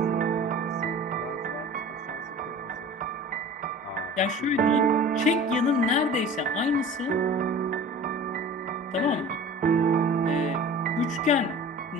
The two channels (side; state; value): both; normal; correlation 0.40